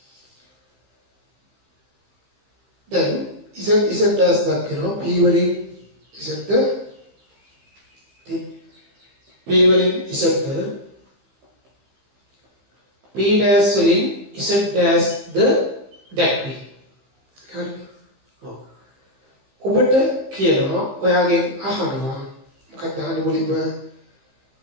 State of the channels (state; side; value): late; left; 15 ms